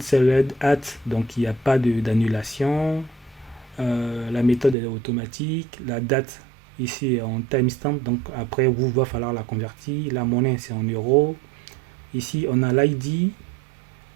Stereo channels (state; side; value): drops out; left; at 4.8 s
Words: at, donc il n'y a pas d'annulation. La méthode est automatique. La date, ici, est en timestamp. Donc après, vous va falloir la convertir. La monnaie, c'est en euros. Ici, on a l'ID.